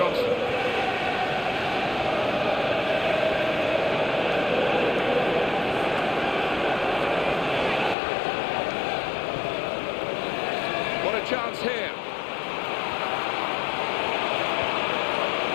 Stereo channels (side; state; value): right; drops out; at 8.0 s